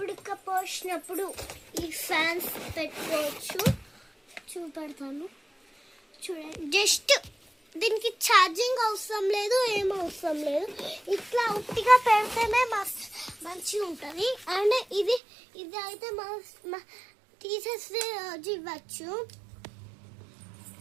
ఈ ఫ్యాన్స్ పెట్టుకోవచ్చు. చూపెడతాను. చూడండి, జస్ట్ దీనికి ఛార్జింగ్ అవసరం లేదు, ఏం అవసరం లేదు. ఇట్లా ఉట్టిగా పెడితేనే మంచిగా ఉంటుంది. అండ్ ఇది అయితే మా టీచర్స్ డే రోజు ఇవ్వచ్చు.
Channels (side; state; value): left; drops out; at 15.2 s